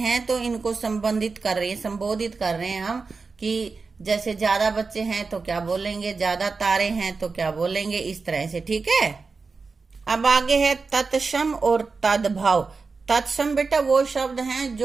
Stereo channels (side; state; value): left; quieter; 4.4 dB